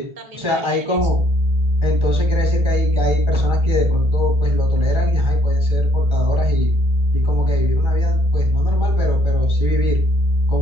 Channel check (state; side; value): late; left; 1.3 ms